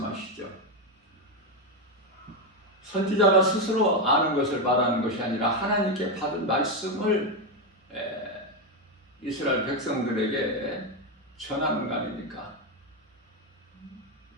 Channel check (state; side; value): normal; both; correlation 0.08